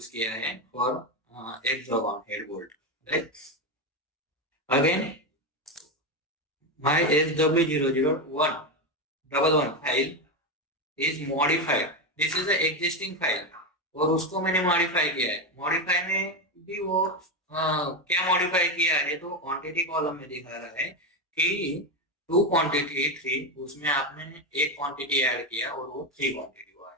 किया है for hexagon head bolt, right? Again, my SW00111 file is modified. This is the existing file, और उसको मैंने मॉडिफाई किया है. मॉडिफाई में भी वो क्या मॉडिफाई किया है तो क्वांटिटी कॉलम में दिखा रहा है कि 2 क्वांटिटी 3, उसमें आपने एक क्वांटिटी ऐड किया और वो 3 क्वांटिटी हुआ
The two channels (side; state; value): both; normal; correlation 0.12